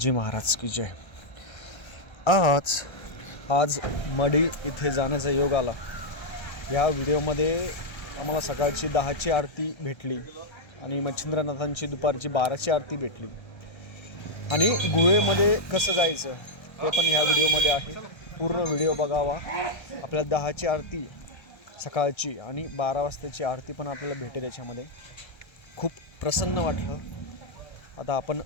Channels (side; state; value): right; late; 1.3 ms